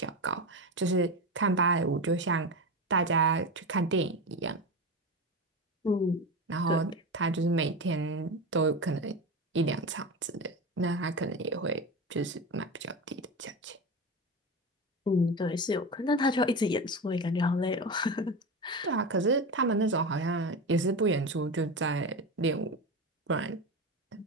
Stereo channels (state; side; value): normal; both; correlation 0.22